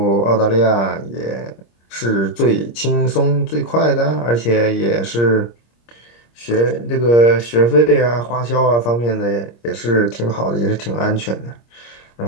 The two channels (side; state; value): right; late; 26 ms